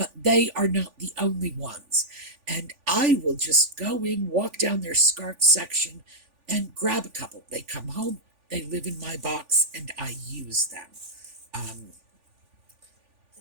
they are not the only ones. And I will just go in, walk down their scarf section, and grab a couple. They come home, they live in my box, and I use them.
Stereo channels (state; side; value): late; left; 3.5 ms